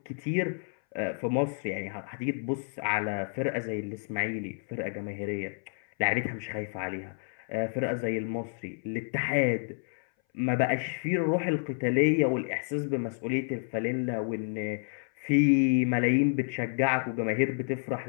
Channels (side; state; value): right; silent; 58 dB below the other